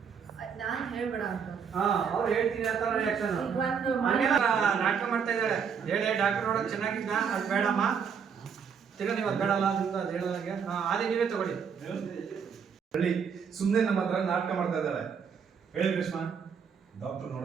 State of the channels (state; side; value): quieter; left; 6.7 dB